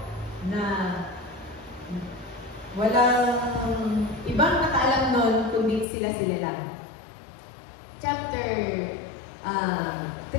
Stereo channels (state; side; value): drops out; right; at 5.9 s